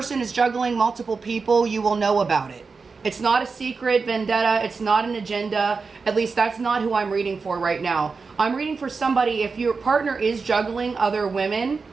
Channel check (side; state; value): left; quieter; 4.7 dB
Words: is juggling multiple people, you will know about it. It's not a secret vendetta. It's not an agenda. At least that's not who I'm reading for right now. I'm reading for somebody, if your partner is juggling other women,